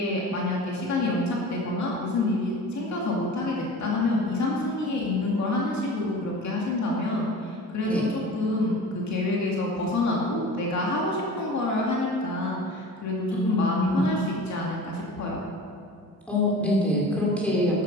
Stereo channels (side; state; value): both; normal; correlation 0.37